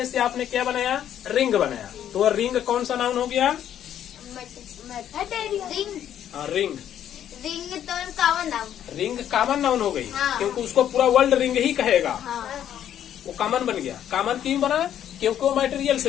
से आपने क्या बनाया? रिंग बनाया। तो रिंग कौन सा नाउन हो गया? रिंग। रिंग तो common noun. Ring common noun हो गई, क्योंकि उसको पूरा वर्ल्ड रिंग ही कहेगा। वो कॉमन बन गया। कॉमन क्यों बना? क्योंकि वो मटेरियल से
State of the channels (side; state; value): right; quieter; 10.4 dB